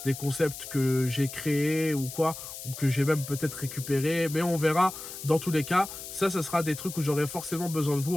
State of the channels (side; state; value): left; noise; hiss, 11 dB below the sound